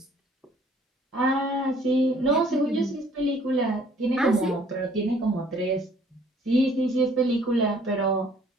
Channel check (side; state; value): both; normal; correlation 0.59